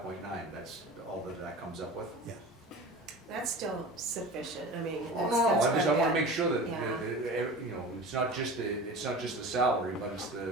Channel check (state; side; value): normal; both; correlation 0.35